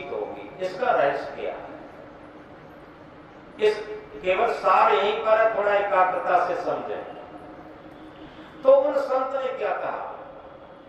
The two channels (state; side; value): identical; both; correlation 1.00